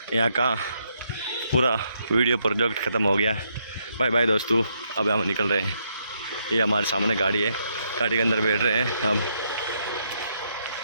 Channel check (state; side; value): inverted; both; correlation -0.76